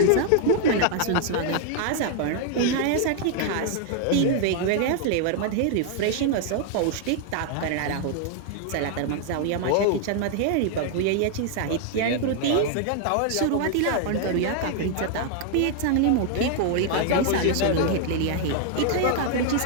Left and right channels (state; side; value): different; both; correlation 0.00